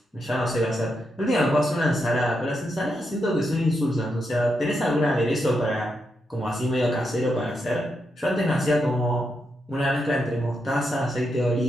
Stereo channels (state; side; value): normal; both; correlation 0.83